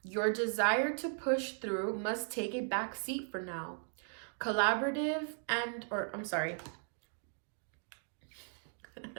Your desire to push through must take a back seat for now. Collaborate and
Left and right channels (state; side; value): silent; left; 53 dB below the other